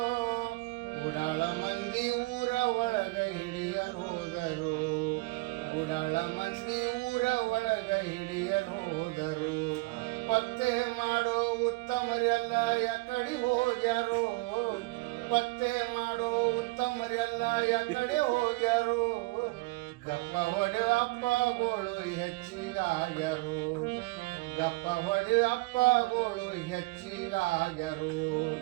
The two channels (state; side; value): quieter; left; 24.0 dB